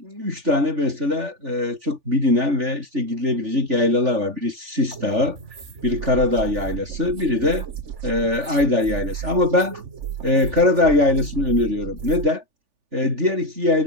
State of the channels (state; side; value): late; left; 3.4 ms